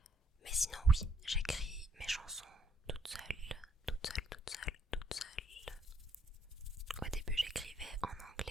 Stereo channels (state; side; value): normal; both; correlation 0.68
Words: Mais sinon oui, j'écris mes chansons toute seule. Au début j'écrivais en